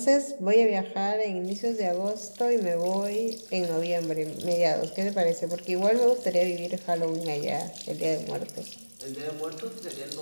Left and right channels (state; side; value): inverted; both; correlation -1.00